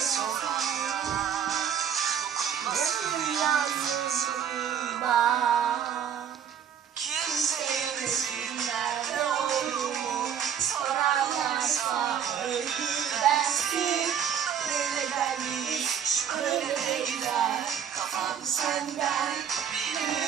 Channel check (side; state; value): left; quieter; 8.4 dB